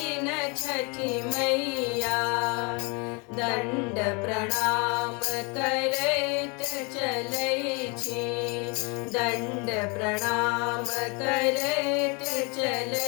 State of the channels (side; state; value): right; quieter; 31.4 dB